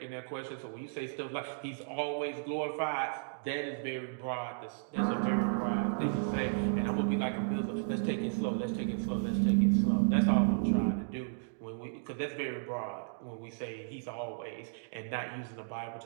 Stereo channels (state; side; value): silent; left; digital silence